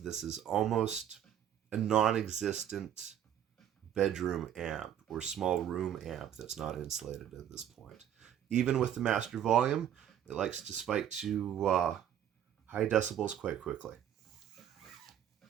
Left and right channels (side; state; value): left; quieter; 10.1 dB